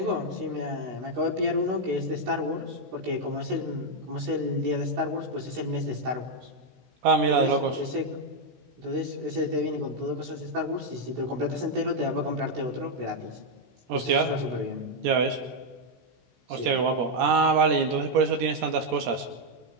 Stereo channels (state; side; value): late; left; 17 ms